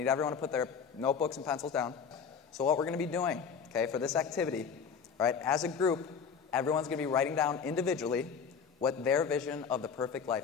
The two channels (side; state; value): right; quieter; 6.5 dB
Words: everyone to put their notebooks and pencils down. So what we're going to be doing, okay, for this activity, right, as a group, everyone's going to be writing down individually what their vision of the perfect